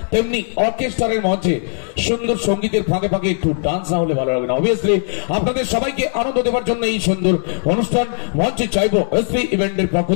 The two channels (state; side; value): silent; right; digital silence